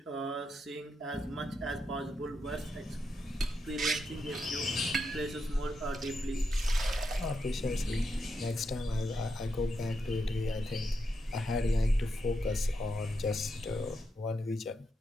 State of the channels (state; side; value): normal; both; correlation 0.84